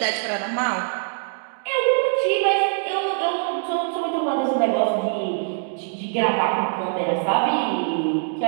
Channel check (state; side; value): silent; left; digital silence